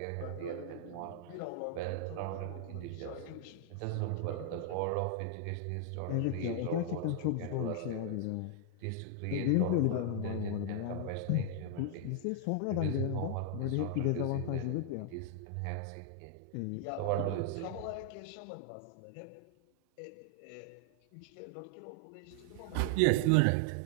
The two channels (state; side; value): different; both; correlation 0.00